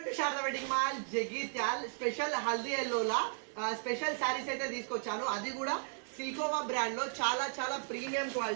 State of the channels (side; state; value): left; silent; 54 dB below the other